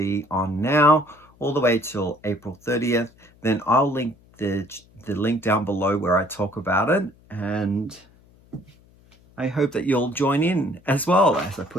on now, all the way till April 30th, then I'll link the link down below where I talk about it, and I hope that you'll join in as well as I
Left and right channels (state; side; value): noise; left; hum, 29 dB below the sound